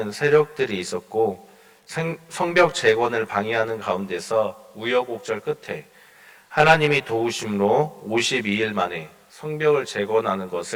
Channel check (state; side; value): identical; both; correlation 1.00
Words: 세력들이 있었고 성벽 재건을 방해하는 가운데서 우여곡절 끝에 하나님이 도우심으로 52일 만에 성벽을 재건하는